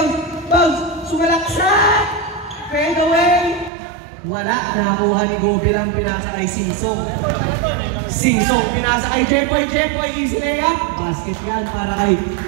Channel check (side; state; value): left; drops out; at 3.7 s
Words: Bounce, sumalaksak! Fade away! Wala, nakakuha ni Gobi lang, pinasa kay Singsong. Singsong, pinasa kay Jepoy. Jepoy, easy layup. Basket yan para kay